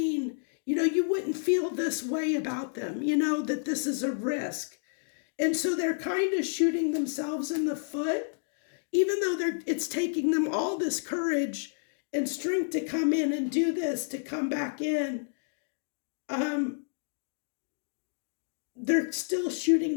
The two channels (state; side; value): silent; right; digital silence